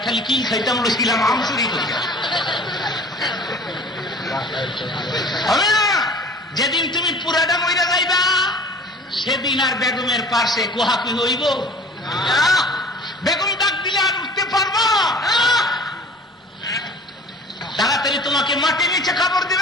খালি কি খাইতাম ছিলাম আমচুরি করি হবে না। যেদিন তুমি পুরাটা মহিলা যাইবা সেদিন আর বেগমের পাশে কোহাকি হইব? বেগম ডাক দিলে আর উঠতে পারবা? তাড়াতাড়ি তোমাকে মাটি নিচে কাপড়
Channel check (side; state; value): both; normal; correlation 0.45